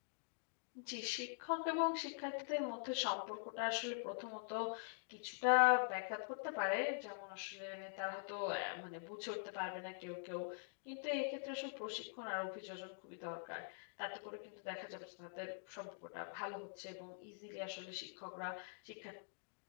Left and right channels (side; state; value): right; silent; digital silence